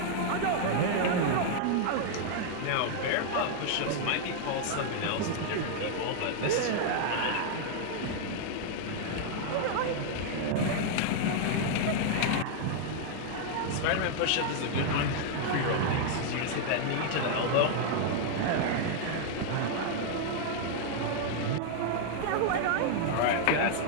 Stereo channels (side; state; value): both; different; correlation 0.00